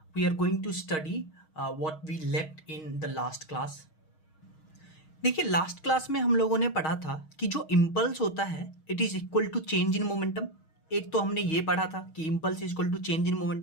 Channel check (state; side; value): late; right; 6.4 ms